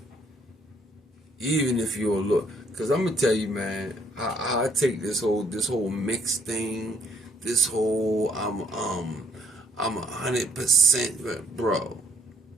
even if you're a little. Cause I'm gonna tell you, man, I take this whole mixed thing, this whole I'm 100%, bro.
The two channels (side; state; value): both; normal; correlation 0.67